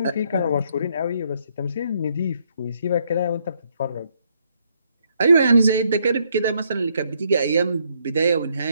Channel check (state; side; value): inverted; both; correlation -0.72